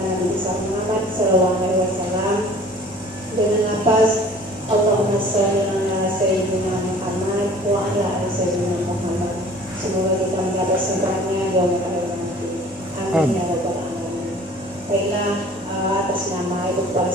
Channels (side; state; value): both; normal; correlation 0.49